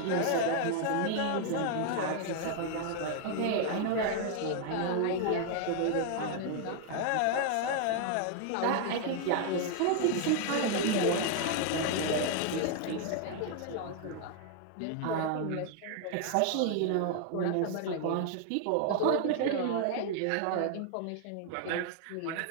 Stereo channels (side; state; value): both; different; correlation 0.00